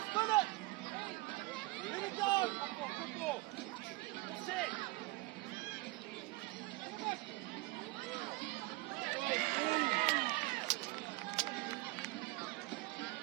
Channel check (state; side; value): quieter; left; 22.9 dB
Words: it! Let it go! Good ball! Set!